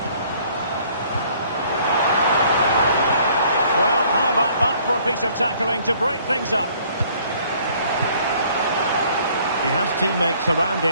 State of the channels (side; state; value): both; inverted; correlation -0.59